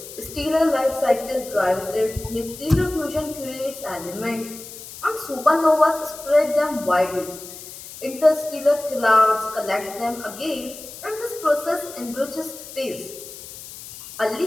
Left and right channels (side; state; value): left; noise; hiss, 14 dB below the sound